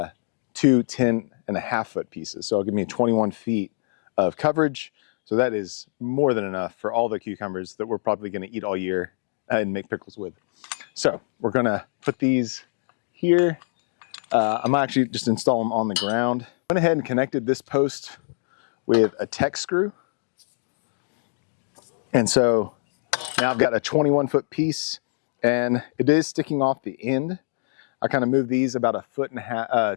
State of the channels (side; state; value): right; silent; digital silence